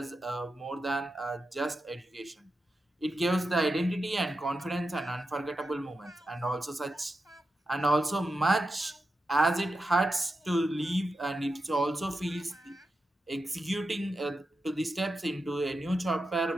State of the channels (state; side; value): normal; both; correlation 0.89